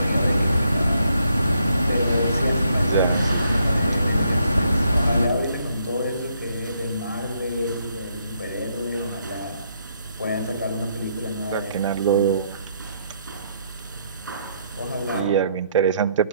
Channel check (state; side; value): inverted; both; correlation -0.73